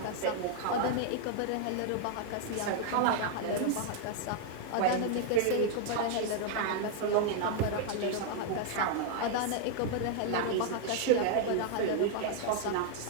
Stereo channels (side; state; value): both; different; correlation 0.00